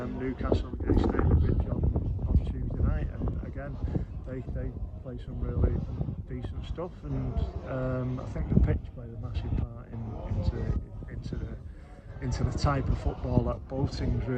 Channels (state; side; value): identical; both; correlation 1.00